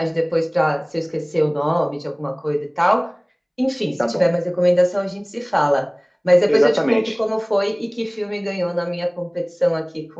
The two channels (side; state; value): both; identical; correlation 1.00